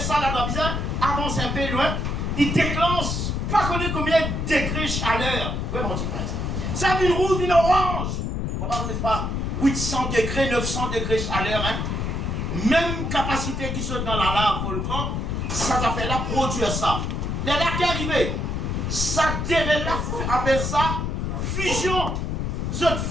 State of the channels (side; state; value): left; noise; rumble, 1 dB below the sound